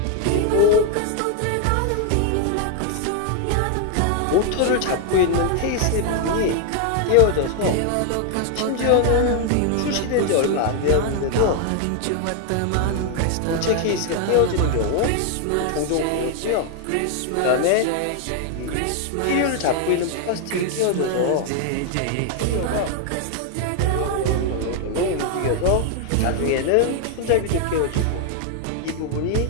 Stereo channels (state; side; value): different; both; correlation 0.00